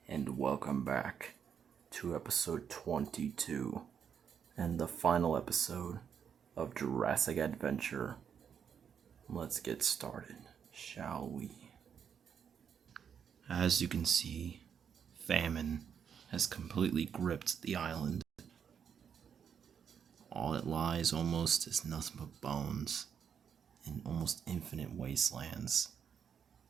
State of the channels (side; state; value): left; quieter; 7.6 dB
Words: and welcome back to episode 22, and the final episode of Jurassic Adventure. Let's get started, shall we? As you can see, famine has completely gripped the island. All it lies almost is nothing but bones in almost infinite wastelands.